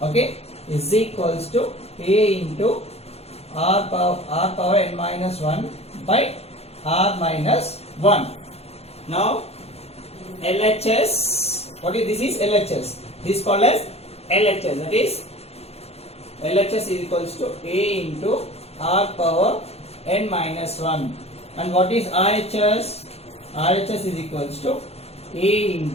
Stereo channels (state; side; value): late; right; 0.30 ms